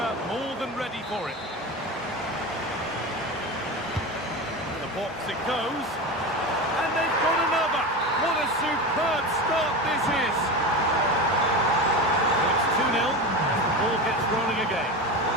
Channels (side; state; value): both; normal; correlation 0.24